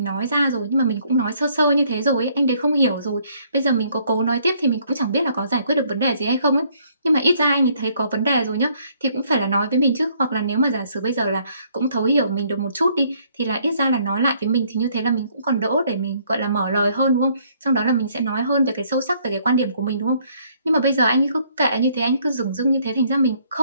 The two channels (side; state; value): both; inverted; correlation -0.65